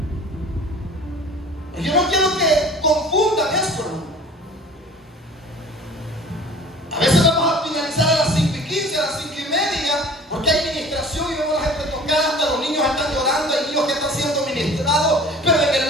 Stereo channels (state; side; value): normal; both; correlation 0.44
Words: Yo no quiero que confundan esto. A veces vamos a finalizar a las 5:15, a las 5:30, porque hay ministración y vemos a la gente tocar, hasta los niños están llorando, hay niños que están siendo ministrados, pero en